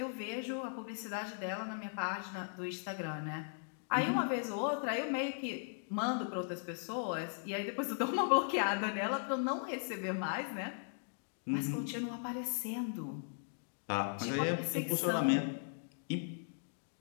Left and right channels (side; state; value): right; silent; digital silence